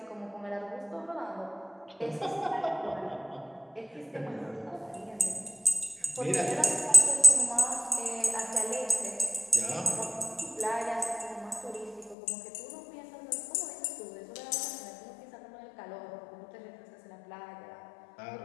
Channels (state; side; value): drops out; right; at 12.2 s